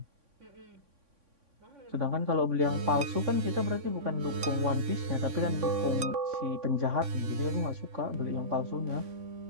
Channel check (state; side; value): late; left; 3.6 ms